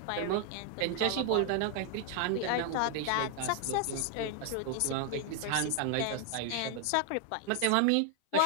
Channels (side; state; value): both; different; correlation 0.00